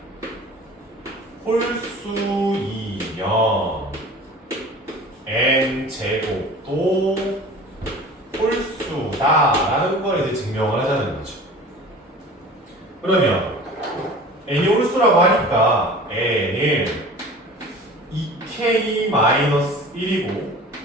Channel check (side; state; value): both; normal; correlation 0.41